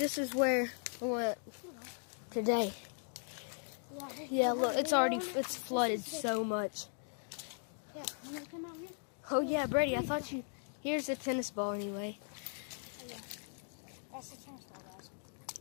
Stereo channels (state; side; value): silent; right; 52 dB below the other